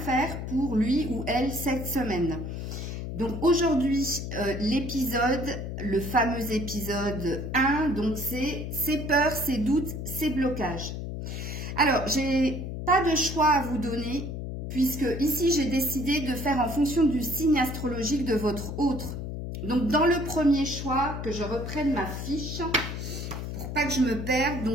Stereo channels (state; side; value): noise; left; hum, 6 dB below the sound